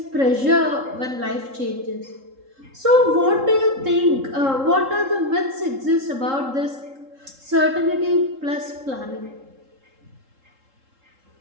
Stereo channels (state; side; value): late; left; 3.7 ms